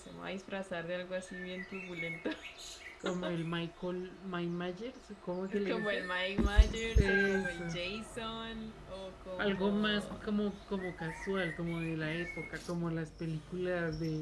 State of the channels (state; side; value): identical; both; correlation 1.00